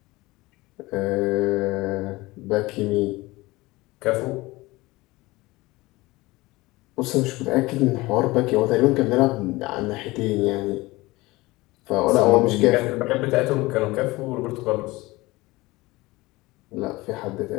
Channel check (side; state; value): right; quieter; 20.9 dB